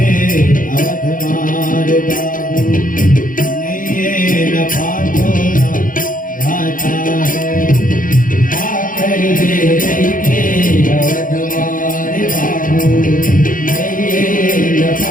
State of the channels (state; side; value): late; right; 0.39 ms